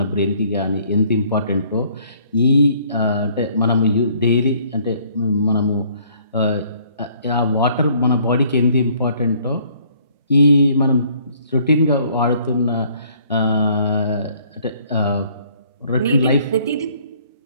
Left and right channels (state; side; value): inverted; both; correlation -0.61